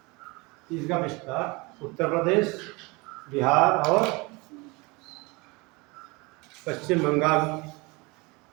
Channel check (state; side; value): quieter; left; 25.9 dB